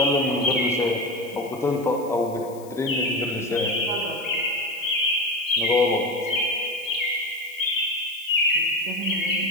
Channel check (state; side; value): noise; left; hiss, 22 dB below the sound